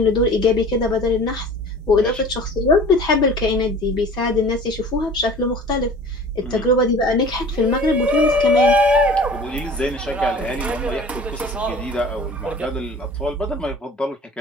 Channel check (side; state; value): both; normal; correlation 0.43